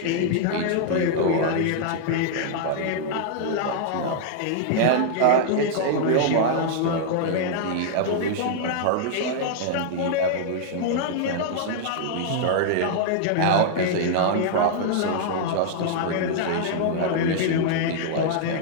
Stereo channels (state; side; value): different; both; correlation -0.01